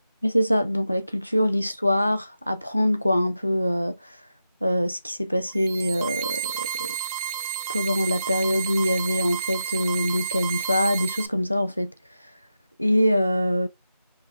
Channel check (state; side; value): inverted; both; correlation -0.88